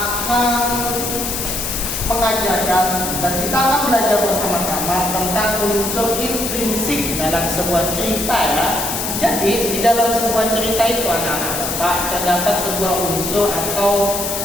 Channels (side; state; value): left; noise; hiss, 3 dB below the sound